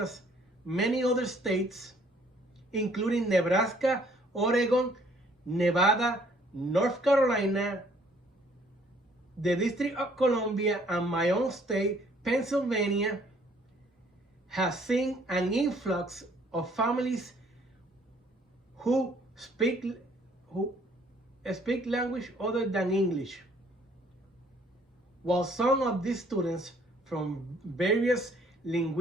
many other states, including Nebraska, Oregon, Nevada, North Carolina, the District of Columbia, and my own state, Pennsylvania, has seen an influx of families who speak language other than English. While some of these students from various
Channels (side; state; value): both; normal; correlation 0.61